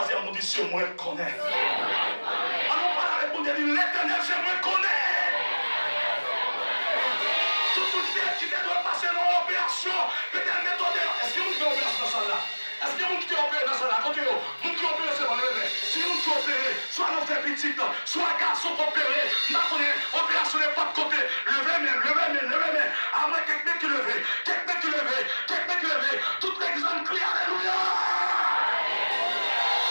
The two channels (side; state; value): both; inverted; correlation -1.00